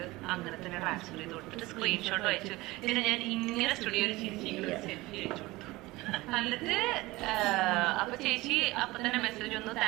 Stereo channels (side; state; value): left; quieter; 20.1 dB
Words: അങ്ങനെ തന്നെ ട്രാൻസ്ഫർ ചെയ്ത് കൊടുത്തിട്ട് സ്ക്രീൻഷോട്ട് അയച്ചു. പിന്നെ ഞാൻ ഇങ്ങനെ സ്റ്റുഡിയോയിൽ ചിരിച്ചിങ്ങനെ ഒരു സെൽഫി അയച്ചു കൊടുത്തു. എന്നിട്ട് അപ്പൊ ചേച്ചി അപ്പൊ തന്നെ മെസ്സേജ് വന്നു,